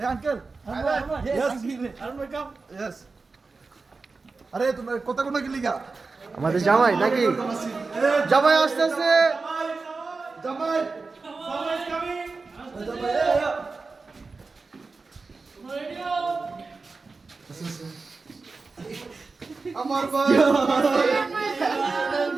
এই আঙ্কেল ইয়েস আরে তুমি কথা কোন কি লিখা আমাদের জামাই নাকি জামাই আসতেছে জামাই আমার ভাই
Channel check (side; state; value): left; quieter; 4.1 dB